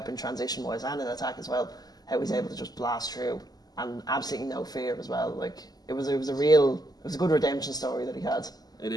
transition wise and in attack as well, how he's able to just blast through and absolutely no fear as well. It was a good redemption story that he had. It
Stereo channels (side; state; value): right; late; 0.19 ms